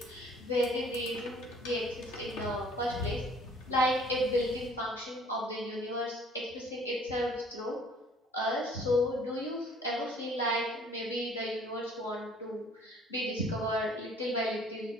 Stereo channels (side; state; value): both; normal; correlation 0.56